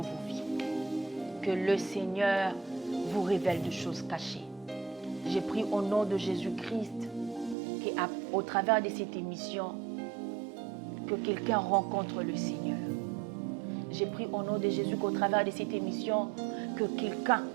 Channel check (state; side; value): drops out; left; at 7.6 s